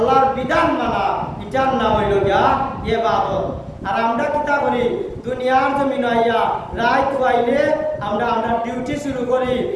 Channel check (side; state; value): both; identical; correlation 1.00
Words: বিধান মানা, এটার নাম হইল গিয়া ইবাদত। আর আমরা কিতা করি দুনিয়ার জমিনে আইয়া রাত হইলে আমরা ডিউটি শুরু করি,